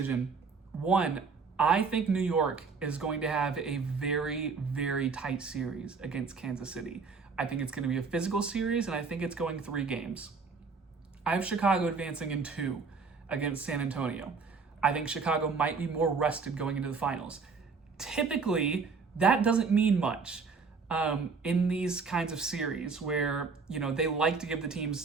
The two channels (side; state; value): left; quieter; 4.9 dB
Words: One, I think New York is going to have a very, very tight series against Kansas City. I think it's going to be a physical series, and I think it's going 3 games. I have Chicago advancing in 2 against San Antonio. I think Chicago might be more rested going into the finals. Typically, that doesn't mean much in these kinds of series where, they like to give the